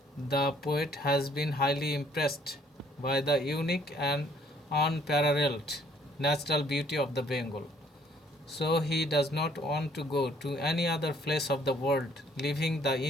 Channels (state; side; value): normal; both; correlation 0.62